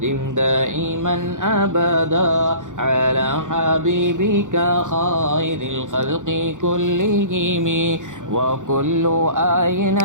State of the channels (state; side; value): late; left; 0.86 ms